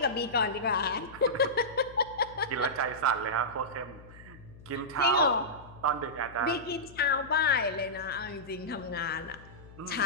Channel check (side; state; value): left; noise; hum, 19 dB below the sound